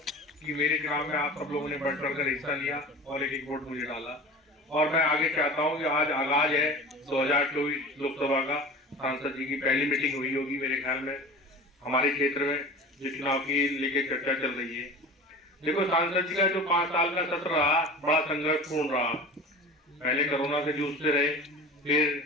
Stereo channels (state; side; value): normal; both; correlation 0.36